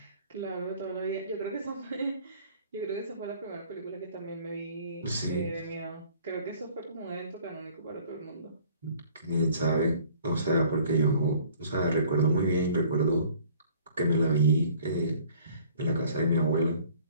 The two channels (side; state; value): both; inverted; correlation -0.55